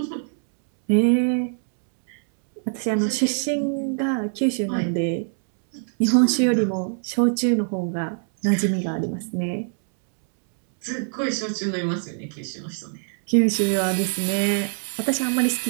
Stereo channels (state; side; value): silent; left; 63 dB below the other